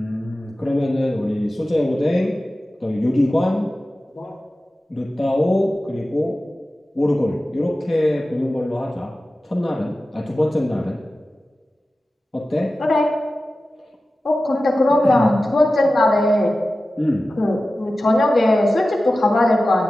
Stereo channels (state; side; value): normal; both; correlation 0.95